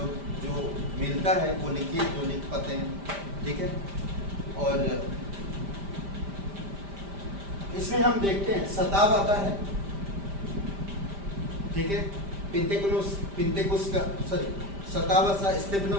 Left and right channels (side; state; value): left; late; 5.1 ms